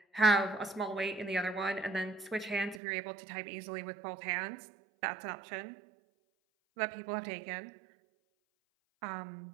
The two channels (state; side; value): drops out; left; at 2.8 s